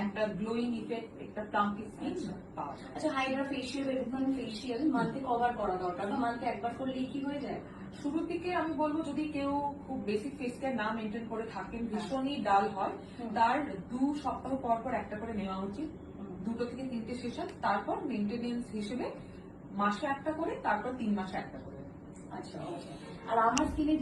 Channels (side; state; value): both; identical; correlation 1.00